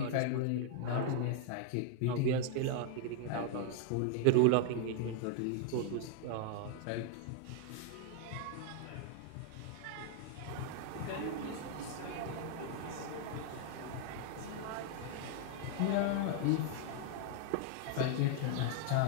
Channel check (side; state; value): both; different; correlation 0.00